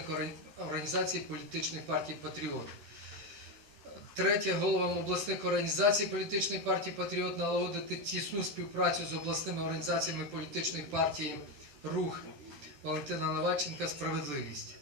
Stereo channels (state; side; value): late; left; 14 ms